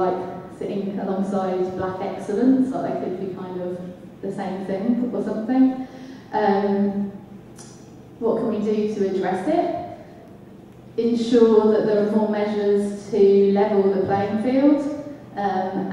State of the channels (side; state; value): both; identical; correlation 1.00